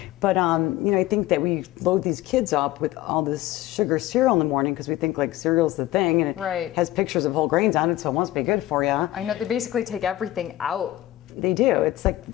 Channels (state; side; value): quieter; right; 15.6 dB